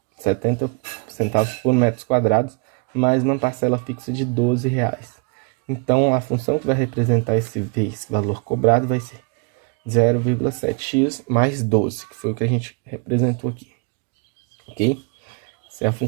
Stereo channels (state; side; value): quieter; left; 32.7 dB